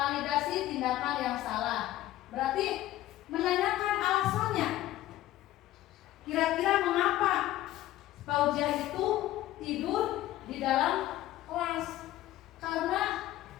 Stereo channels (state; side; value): quieter; right; 14.8 dB